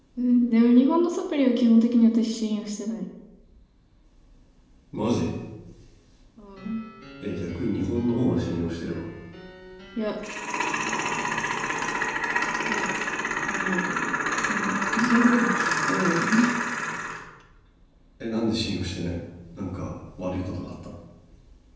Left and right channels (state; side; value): identical; both; correlation 1.00